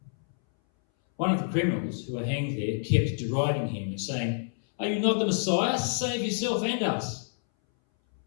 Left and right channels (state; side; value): silent; right; 59 dB below the other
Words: One of the criminals who were hanged there kept deriding him and saying, "Are you not the Messiah? Save yourself and us."